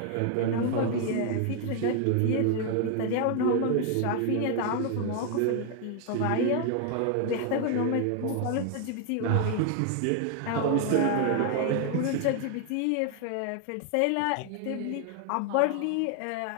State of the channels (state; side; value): different; both; correlation 0.00